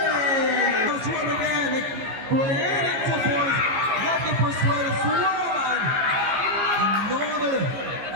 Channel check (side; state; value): left; late; 15 ms